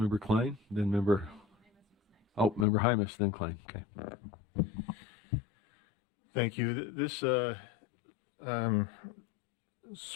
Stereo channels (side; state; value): right; drops out; at 2.7 s